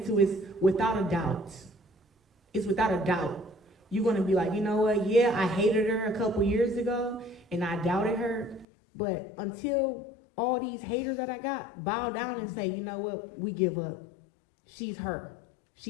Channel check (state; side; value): drops out; right; at 8.7 s